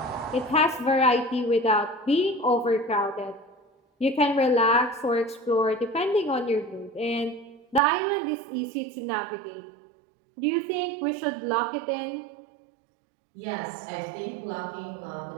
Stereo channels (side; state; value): left; drops out; at 7.8 s